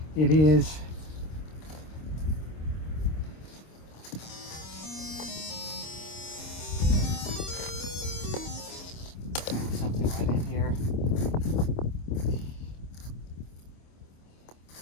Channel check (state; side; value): late; right; 26 ms